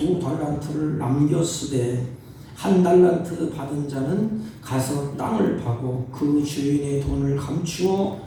남겼으되 1달란트 받은 자는 가서 땅을 파고 그 주인의 돈을 감추어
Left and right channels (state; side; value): identical; both; correlation 1.00